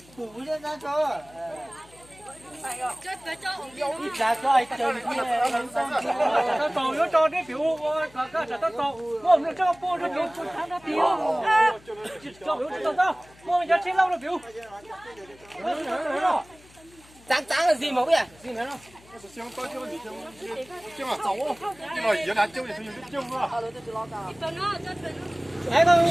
củ lên ra cho ít ra cho ai chơi như này nó trầu nó cho cái biểu cái nó trầu mua nó cho mua nó biểu tháng nó biểu cho biểu cho tao mua giờ chơi lâu nó biểu trắng là gì mà vậy gì nữa không香刀椒你香啊走哦，因为原来椒也是有椒啊。哎，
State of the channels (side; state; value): left; noise; hum, 25 dB below the sound